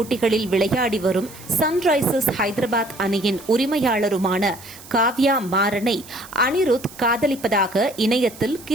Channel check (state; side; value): noise; right; hiss, 18 dB below the sound